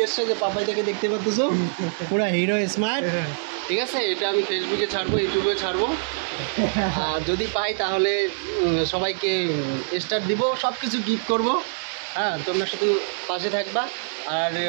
যে পাপাইটাকে দেখতে পাচ্ছো পুরো হিরো স্মার্ট, ঠিক আছে? এটা আমি ফেসবুকে ছাড়বো, ইউটিউবে ছাড়বো, আর যদি পাই তাহলে সবাইকে স্টার দিব, সব কিছু গিফট করবো। হ্যাঁ, তোমরা শুধু পাশে থাকবা আর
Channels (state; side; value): silent; left; digital silence